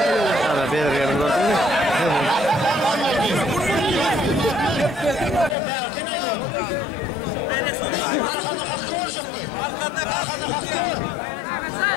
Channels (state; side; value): drops out; right; at 5.6 s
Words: Ana bir yerim gördün mü? Arkanda hakkı olacaktı. Arkanda hakkı var.